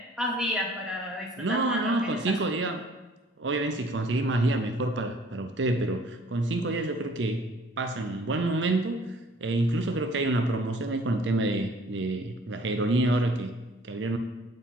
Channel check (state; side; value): normal; both; correlation 0.54